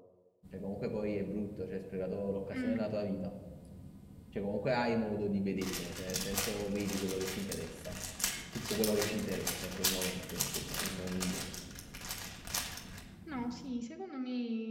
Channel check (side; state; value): both; identical; correlation 1.00